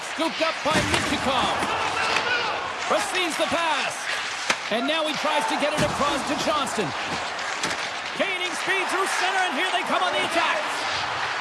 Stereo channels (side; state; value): both; identical; correlation 1.00